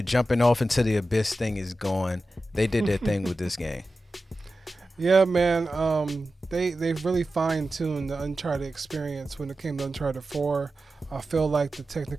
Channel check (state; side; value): normal; both; correlation 0.93